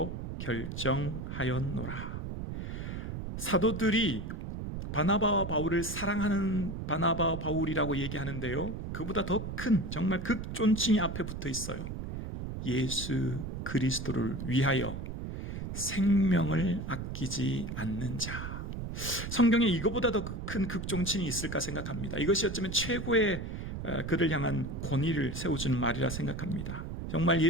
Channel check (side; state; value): right; noise; rumble, 6 dB below the sound